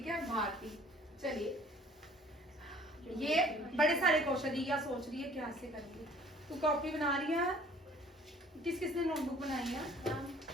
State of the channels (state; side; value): normal; both; correlation 0.53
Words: है, भारती। चलिए, ये बड़े सारे क्वेश्चन, ये सोच रही है क्या से करेंगे। तू कॉपी बना रही है, किसने नोटबुक बनाई है?